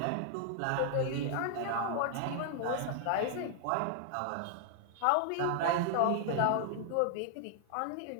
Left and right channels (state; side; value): different; both; correlation 0.00